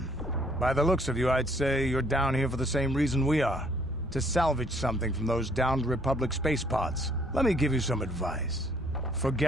By the looks of you, I'd say you're down here for the same reason we are. To salvage something from those downed Republic space pods. Let me give you some advice.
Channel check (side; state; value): both; normal; correlation 0.63